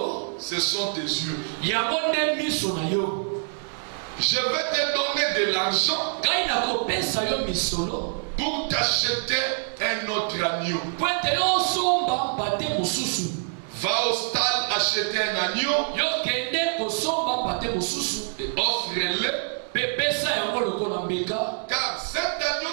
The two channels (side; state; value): left; silent; digital silence